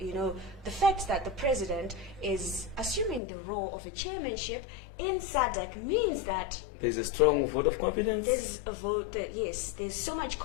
fact that the President is assuming the role of a chairmanship in Sadc means that there's a strong vote of confidence. There's a vote that, yes, there's so much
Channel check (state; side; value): drops out; right; at 3.2 s